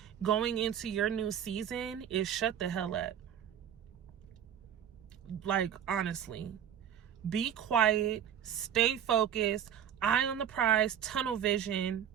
going into your new season is shut the hell up. Like, honestly. Be quiet. Stay focused. Eye on the prize. Tunnel vision.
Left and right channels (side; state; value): left; quieter; 9.5 dB